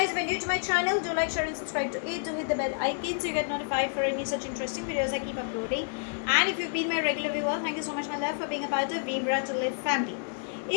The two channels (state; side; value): silent; right; digital silence